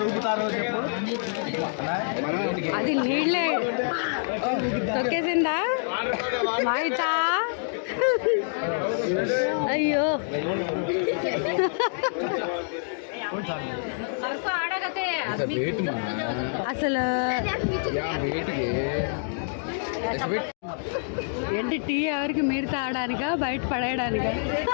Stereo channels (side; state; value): right; silent; digital silence